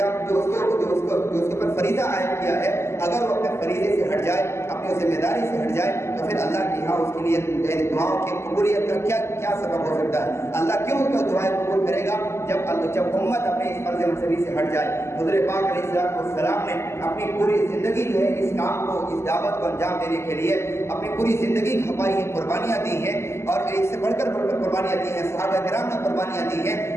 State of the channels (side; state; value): right; late; 0.13 ms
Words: جو اس کے اوپر فریضہ عائد کیا ہے، اگر وہ اپنے فریضے سے ہٹ جائے، اپنی ذمہ داری سے ہٹ جائے، تو پھر اللہ کے یہاں اس کے لیے دعاؤں کی قبولیت کا کیا سبب ہو سکتا ہے؟ اللہ کیوں اس کا دعائیں قبول کرے گا جب امت اپنے اس فرض منصبی سے ہٹ جائے؟ حضرت پاک علیہ السلام نے اپنی پوری زندگی جو ہے اس کام کو، اس دعوت کو انجام دینے کے لیے اپنی پوری زندگی کھپائی ہے، قربانیاں دی ہیں، اور ایک سے بڑھ کر قربانیاں دی ہیں۔ صحابہ کرام نے قربانیاں دی ہیں